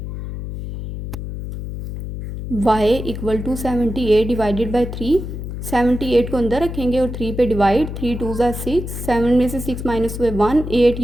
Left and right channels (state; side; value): noise; left; hum, 7 dB below the sound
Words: y equal to 78 divided by 3। 78 को अंदर रखेंगे और 3 पे डिवाइड, 3 2 ज़ा 6, 7 में से 6 माइनस हुए 1, 8